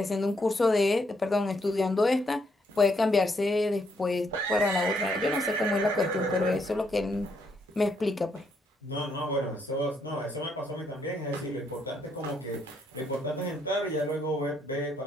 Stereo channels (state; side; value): normal; both; correlation 0.74